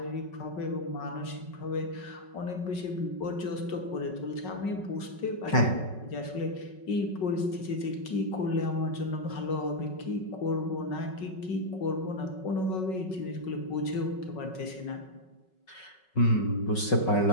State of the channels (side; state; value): right; late; 5.4 ms